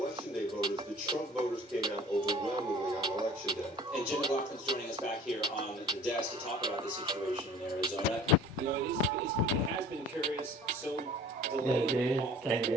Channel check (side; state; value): both; normal; correlation 0.46